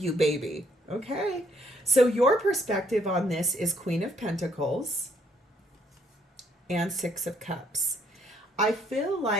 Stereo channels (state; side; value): normal; both; correlation 0.67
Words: baby. Okay. So your perspective on this is Queen of Pentacles and Six of Cups. I feel